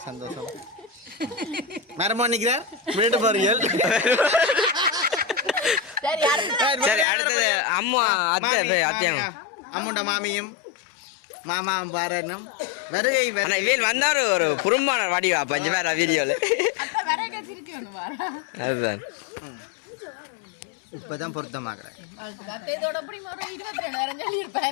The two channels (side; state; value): right; drops out; at 7.1 s